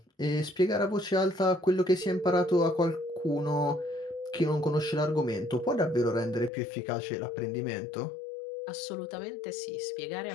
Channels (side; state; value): right; drops out; at 6.5 s